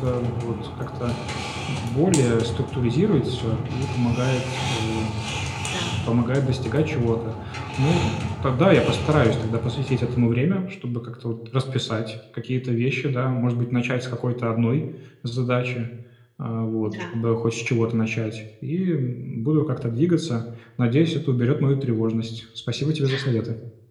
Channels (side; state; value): both; identical; correlation 1.00